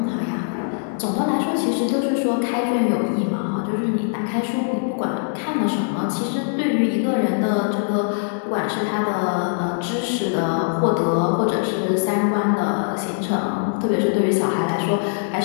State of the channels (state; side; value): silent; right; 60 dB below the other